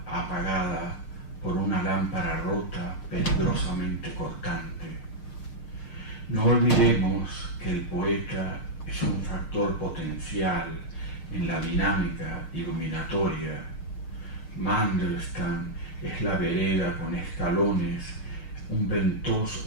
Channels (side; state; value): right; late; 6.5 ms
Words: apagada por una lámpara rota peligrosamente cortante. No olvidemos que el poeta es un factor potencial en la dinámica iluminatoria. Mandelstam es la vereda con escalones, un